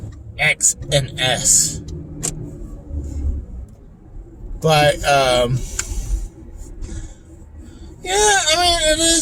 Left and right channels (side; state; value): both; identical; correlation 1.00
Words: X and S. But, it